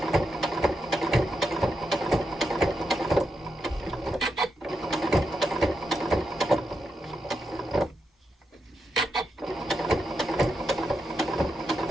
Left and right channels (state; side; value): normal; both; correlation 0.85